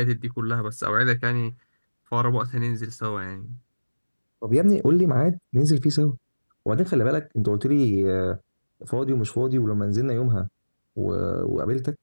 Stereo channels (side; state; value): both; inverted; correlation -1.00